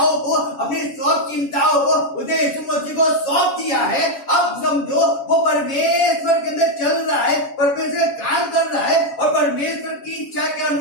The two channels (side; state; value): right; late; 7.2 ms